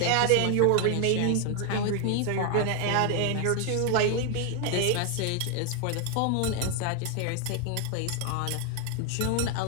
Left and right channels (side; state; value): both; different; correlation 0.01